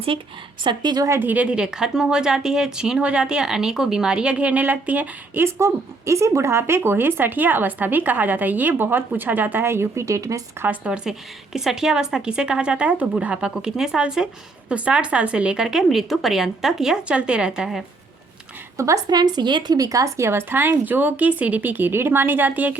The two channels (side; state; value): left; quieter; 3.5 dB